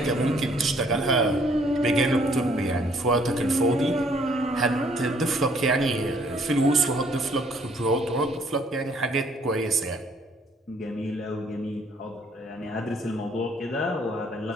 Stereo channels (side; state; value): both; normal; correlation 0.63